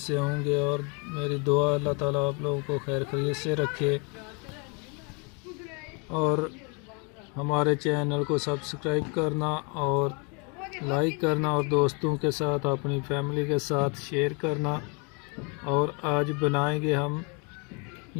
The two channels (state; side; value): quieter; right; 33.6 dB